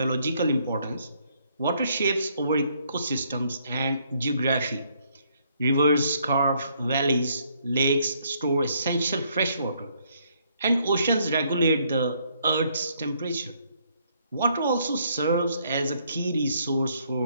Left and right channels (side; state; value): both; inverted; correlation -0.69